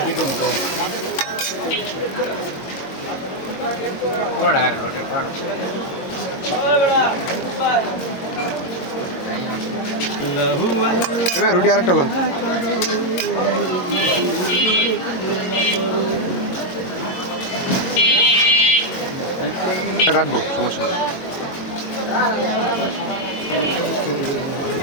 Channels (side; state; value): right; late; 22 ms